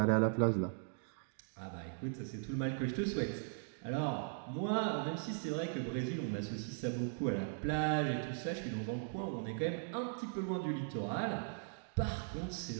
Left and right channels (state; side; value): silent; left; digital silence